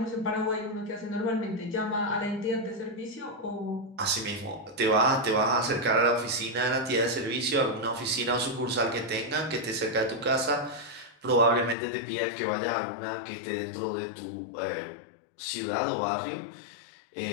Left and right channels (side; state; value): right; drops out; at 11.8 s